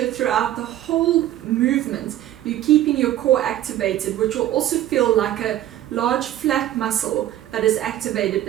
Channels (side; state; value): left; quieter; 13.0 dB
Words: throughout the whole movement you're keeping your core activated, which will also feel like a large flat muscle that is activated